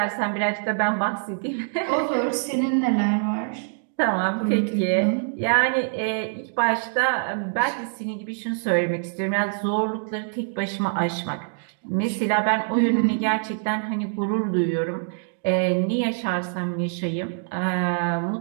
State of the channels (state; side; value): silent; left; digital silence